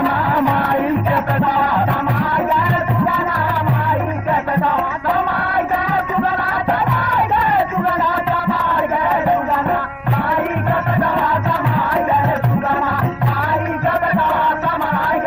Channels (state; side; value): identical; both; correlation 1.00